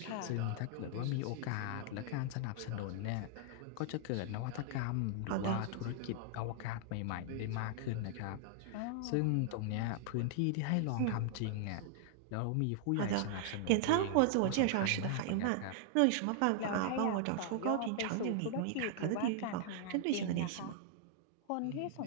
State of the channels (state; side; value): different; both; correlation -0.01